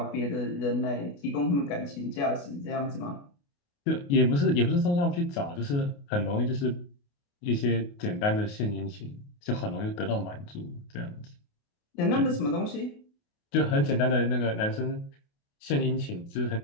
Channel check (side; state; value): right; late; 28 ms